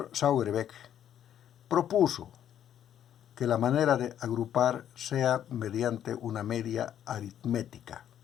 Sauerbeck propuso que la manera de agrupar sea mediante una media aritmética.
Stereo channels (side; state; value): right; quieter; 10.2 dB